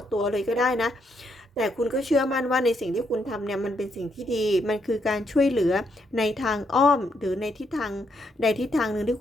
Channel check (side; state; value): both; normal; correlation 0.77